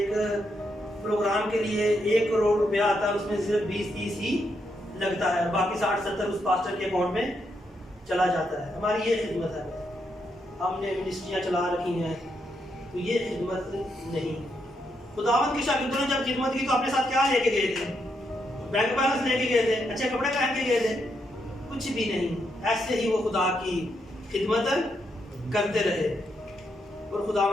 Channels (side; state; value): both; normal; correlation 0.80